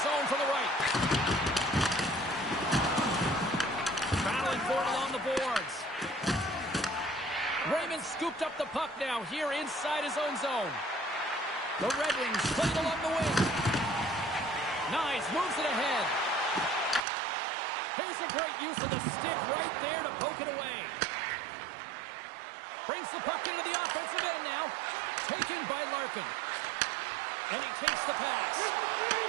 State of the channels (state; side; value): drops out; left; at 17.1 s